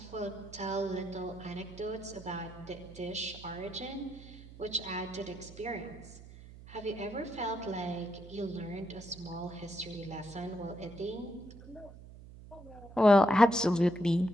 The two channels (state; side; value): noise; right; hum, 17 dB below the sound